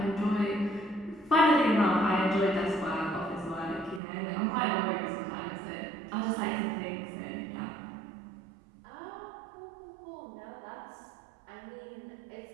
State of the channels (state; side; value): drops out; left; at 4.0 s